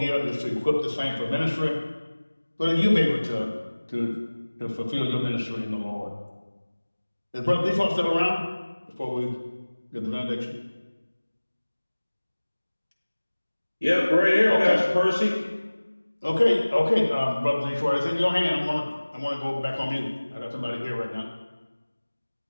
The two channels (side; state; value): both; inverted; correlation -1.00